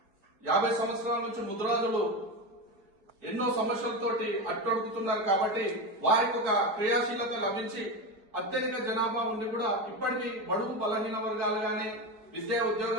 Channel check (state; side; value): late; left; 4.7 ms